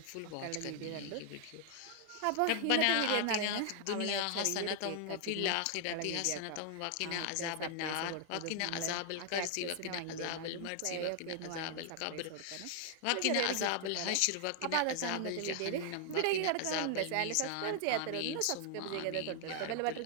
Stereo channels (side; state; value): both; different; correlation 0.00